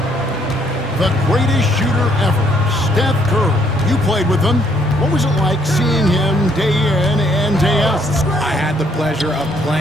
The greatest shooter ever, Steph Curry. You played with him. What was it like seeing him day in and day out? I had the pleasure of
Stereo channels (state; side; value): normal; both; correlation 0.67